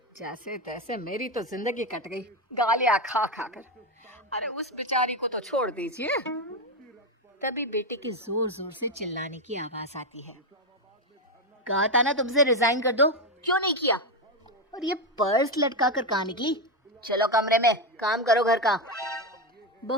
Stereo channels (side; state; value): both; normal; correlation 0.09